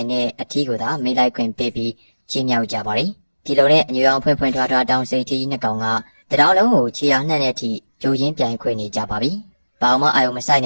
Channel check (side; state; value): both; inverted; correlation -1.00